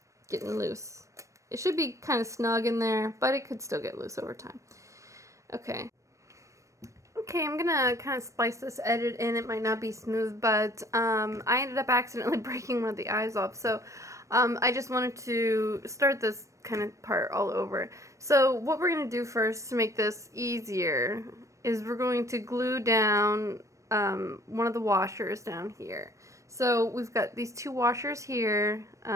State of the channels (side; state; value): left; late; 0.15 ms